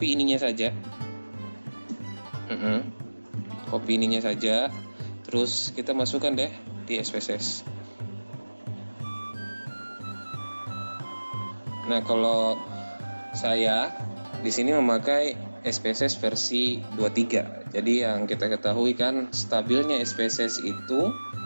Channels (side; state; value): both; inverted; correlation -1.00